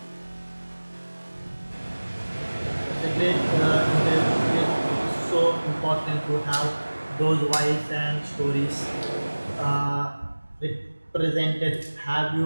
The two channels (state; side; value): inverted; both; correlation -1.00